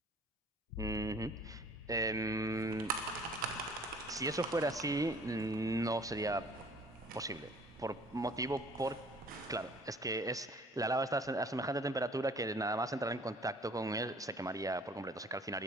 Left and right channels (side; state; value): both; normal; correlation 0.53